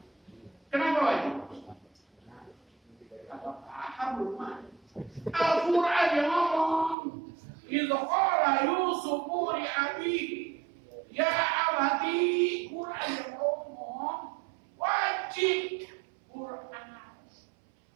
Kenapa wajib? Apa paham rumah? Al-Quran yang ngomong, idza qala Yusufu li abihi ya abati, Quran yang ngomong wajib Quran.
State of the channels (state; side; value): drops out; left; at 7.0 s